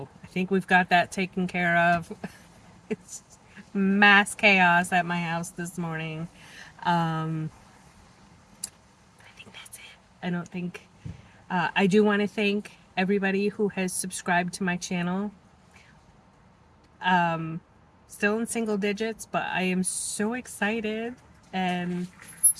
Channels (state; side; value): identical; both; correlation 1.00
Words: I think we've got that taken care of. It's mass chaos at my house this morning. I think that's it. I don't think. I do want to thank everybody who has subscribed to my channel. Still in single digits, but I am so excited and